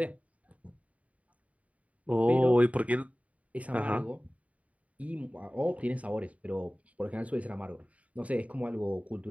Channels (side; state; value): left; late; 0.068 ms